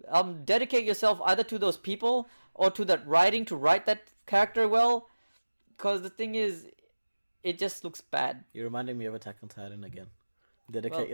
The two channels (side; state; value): both; inverted; correlation -1.00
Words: Dedicate yourself either to those people or to that writing to write that character well. Because the thing is, it just looks bad. You're reminding me of Attack on Titan again. Dedicate